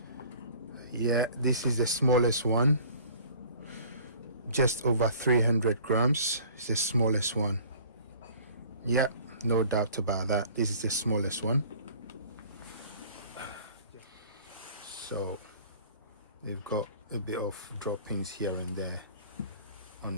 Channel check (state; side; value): inverted; both; correlation -0.49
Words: Yeah, this is the smallest one. Just over 300 grams. It's the smallest one. Yeah, no doubt about that. This is the smallest one. So they've got a bit of droppings here and there